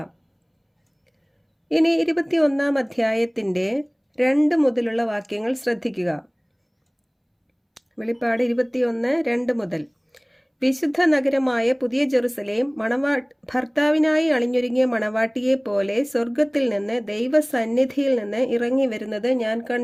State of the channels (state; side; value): identical; both; correlation 1.00